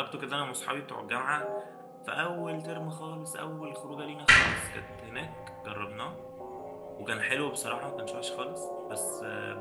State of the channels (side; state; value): both; identical; correlation 1.00